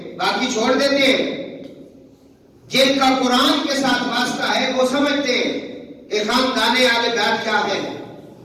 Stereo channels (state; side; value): identical; both; correlation 1.00